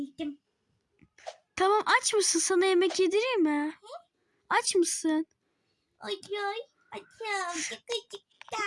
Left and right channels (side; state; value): both; identical; correlation 1.00